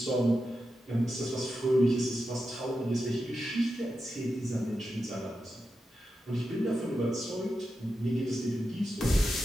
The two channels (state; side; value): normal; both; correlation 0.89